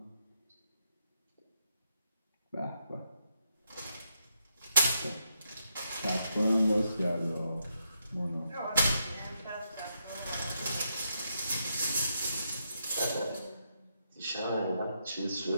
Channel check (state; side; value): inverted; both; correlation -0.80